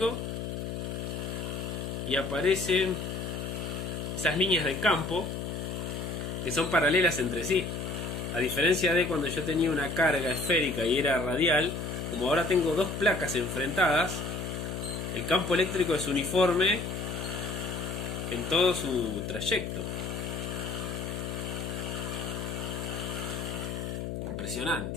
y aparecen esas líneas de campo que son paralelas entre sí. A diferencia de cuando yo tenía una carga esférica y era radial, como ahora tengo dos placas enfrentadas, el campo eléctrico es uniforme en todo su trayecto.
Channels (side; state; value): left; noise; hum, 4 dB below the sound